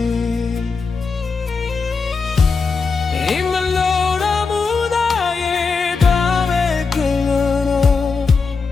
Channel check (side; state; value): right; quieter; 4.7 dB